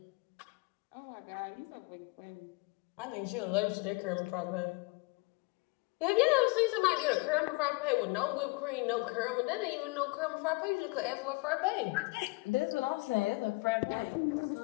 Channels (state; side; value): quieter; right; 26.2 dB